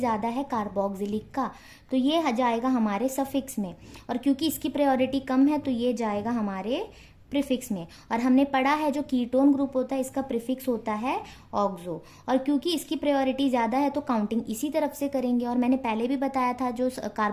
है कार्बोक्सिलिक का, तो ये जाएगा हमारे सफिक्स में, और क्योंकि इसकी प्रायोरिटी कम है तो ये जाएगा हमारे प्रीफिक्स में। और हमने पढ़ा है जो कीटोन ग्रुप होता है इसका प्रीफिक्स होता है ऑक्सो, और क्योंकि इसकी प्रायोरिटी ज़्यादा है तो काउंटिंग इसी तरफ से करेंगे। और मैंने पहले भी बताया था जो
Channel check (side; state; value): both; identical; correlation 1.00